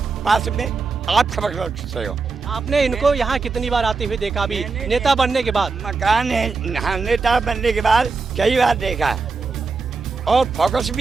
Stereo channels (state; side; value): quieter; left; 4.4 dB